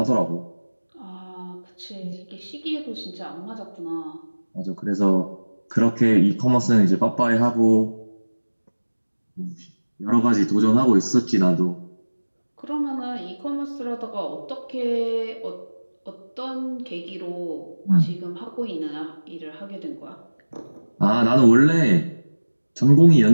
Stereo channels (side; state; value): both; inverted; correlation -1.00